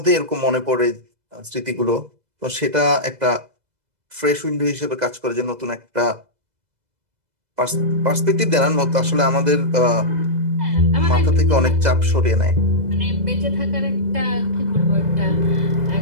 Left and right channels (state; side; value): late; left; 2.0 ms